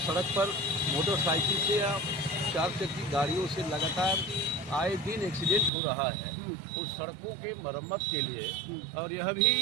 पर मोटरसाइकिल से या 4 चक्की गाड़ियों से लगातार आए दिन एक्सीडेंट हो रहा है उस सड़कों के मरम्मत के लिए। और यह भी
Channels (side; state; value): left; drops out; at 5.7 s